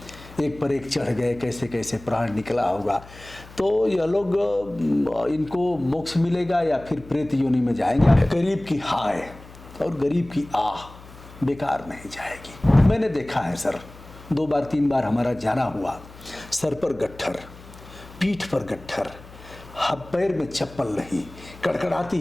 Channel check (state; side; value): noise; left; hum, 19 dB below the sound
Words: एक पर एक चढ़ गए, कैसे कैसे प्राण निकला होगा, तो यह लोग इनको मोक्ष मिलेगा या फिर प्रेत योनि में जाएंगे। गरीब की हाय और गरीब की आह बेकार नहीं जाएगी। मैंने देखा है सर, 2 बार 3 बार हमारा जाना हुआ। सर पर गट्ठर, पीठ पर गट्ठर, पैर में चप्पल नहीं,